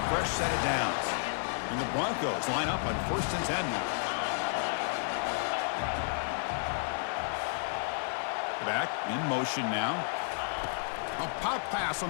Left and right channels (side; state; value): right; silent; digital silence